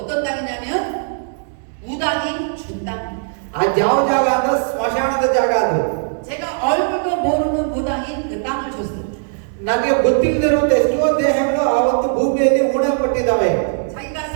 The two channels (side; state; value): left; silent; digital silence